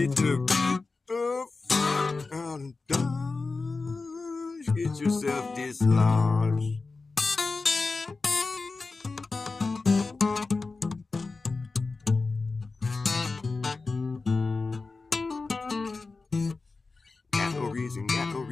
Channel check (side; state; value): right; quieter; 3.9 dB